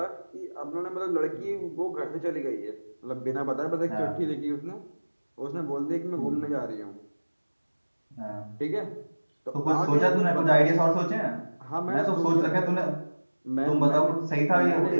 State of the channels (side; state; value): both; inverted; correlation -1.00